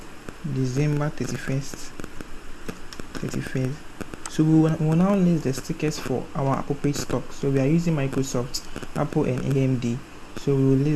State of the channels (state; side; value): identical; both; correlation 1.00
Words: December 31st. So we will now list the stickers for our appropriate stock. So we are using Microsoft, Apple and AMD. So we will